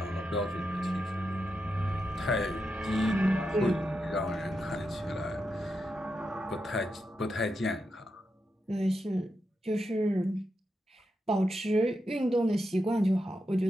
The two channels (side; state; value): both; normal; correlation 0.86